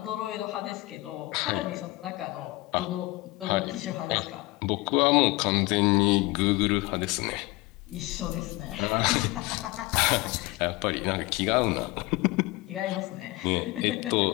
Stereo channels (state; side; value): quieter; right; 21.5 dB